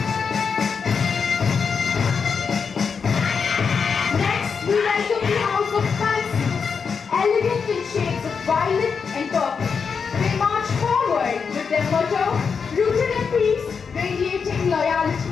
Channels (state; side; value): quieter; right; 5.8 dB